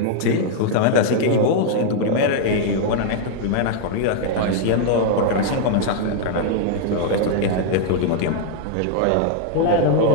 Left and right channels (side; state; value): both; different; correlation -0.01